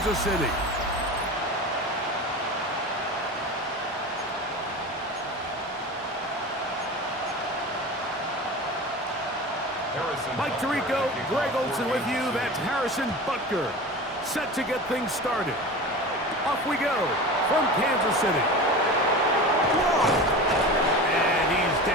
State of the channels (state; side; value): normal; both; correlation 0.31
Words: City. Mike Tirico, Greg Olson with you. That's Harrison Butker, set to get things started. Off we go from Kansas City. And he's